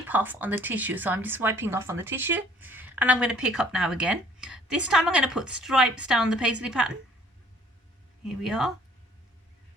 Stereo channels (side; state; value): both; normal; correlation 0.57